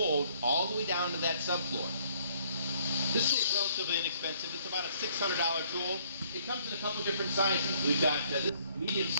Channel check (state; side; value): inverted; both; correlation -0.63